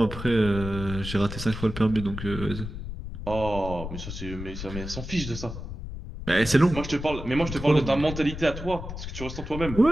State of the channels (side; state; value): left; noise; rumble, 8 dB below the sound